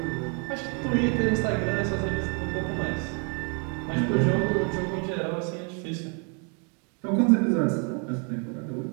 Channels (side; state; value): left; quieter; 38.5 dB